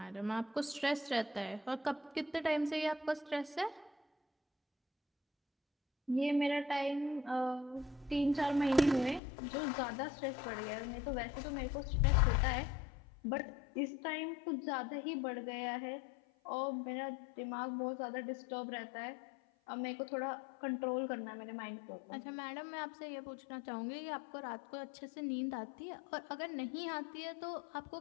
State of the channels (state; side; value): drops out; right; at 9.2 s